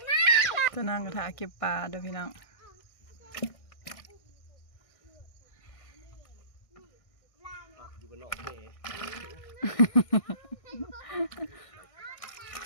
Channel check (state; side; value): late; right; 1.6 ms